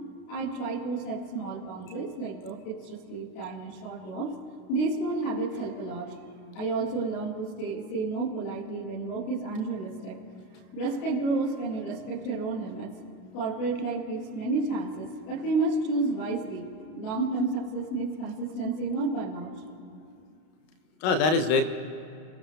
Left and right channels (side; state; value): right; late; 32 ms